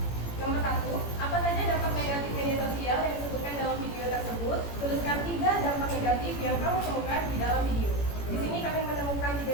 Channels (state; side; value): late; right; 18 ms